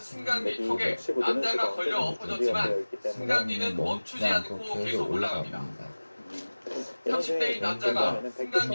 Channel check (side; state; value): both; inverted; correlation -1.00